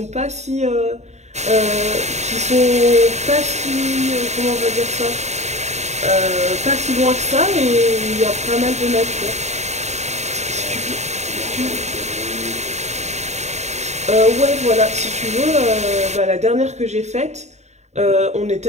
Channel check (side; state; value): left; late; 0.33 ms